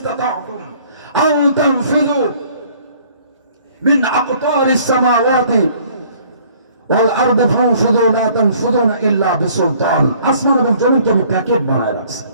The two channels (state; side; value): inverted; both; correlation -0.57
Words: আও তানফিযু মিন আকতারিস সামাওয়াতি ওয়াল আরদি ফানফুযু লা তানফুযুনা ইল্লা বিসুলতান। আসমান এবং জমিনকে আমি প্যাকেট বানায় রাখছি।